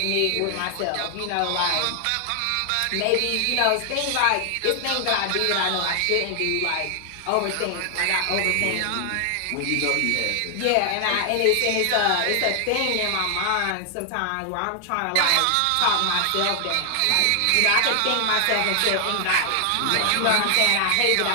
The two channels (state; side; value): different; both; correlation 0.00